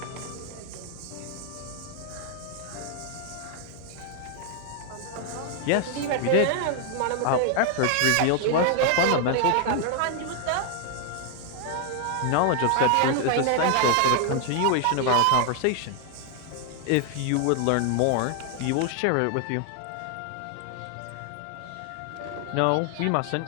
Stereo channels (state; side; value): different; both; correlation 0.00